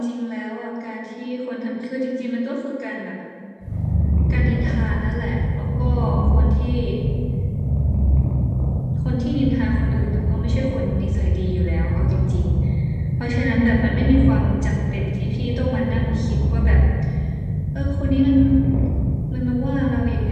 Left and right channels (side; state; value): both; identical; correlation 1.00